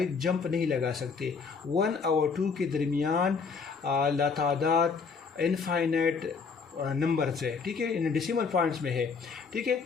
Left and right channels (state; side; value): quieter; right; 5.2 dB